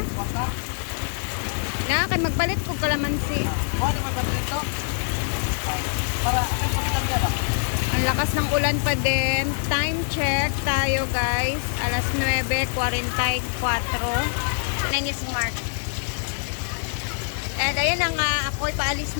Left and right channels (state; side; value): silent; right; digital silence